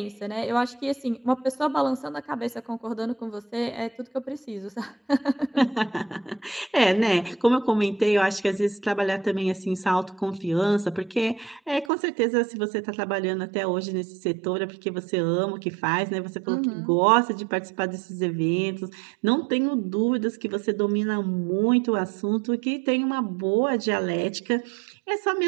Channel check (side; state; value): left; drops out; at 11.9 s